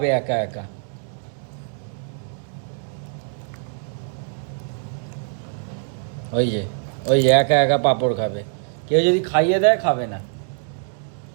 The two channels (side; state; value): left; silent; 63 dB below the other